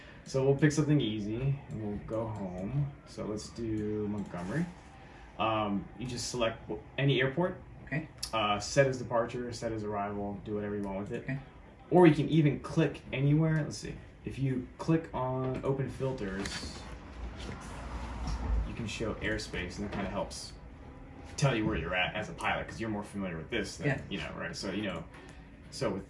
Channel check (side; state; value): both; identical; correlation 1.00